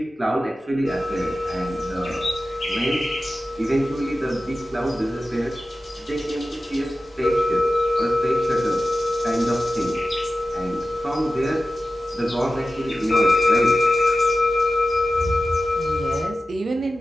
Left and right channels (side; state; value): both; normal; correlation 0.93